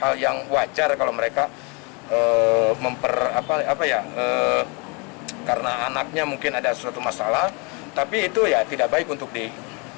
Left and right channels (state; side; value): quieter; right; 31.2 dB